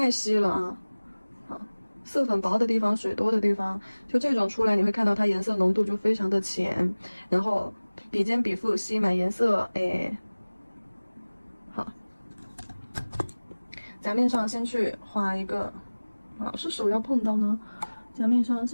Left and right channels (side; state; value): both; inverted; correlation -1.00